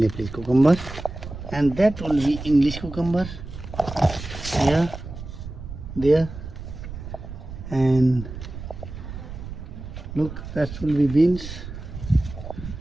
cucumber, and that will be English cucumber. Here, there, and look, that will be beans.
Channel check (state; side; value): noise; right; rumble, 10 dB below the sound